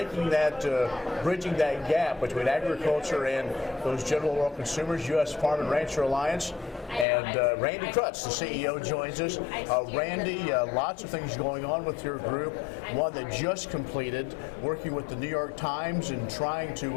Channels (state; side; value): drops out; right; at 7.1 s